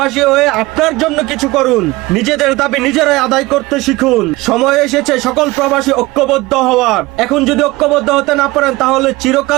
হয়ে আপনার জন্য কিছু করুন। নিজেদের দাবি নিজেরাই আদায় করতে শিখুন। সময় এসেছে সকল প্রবাসী ঐক্যবদ্ধ হওয়ার। এখন যদি ঐক্যবদ্ধ হতে না পারেন তাহলে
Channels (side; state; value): left; quieter; 20.9 dB